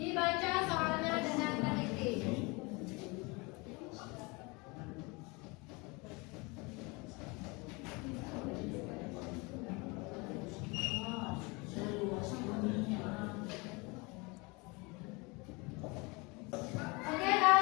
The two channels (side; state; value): right; quieter; 27.1 dB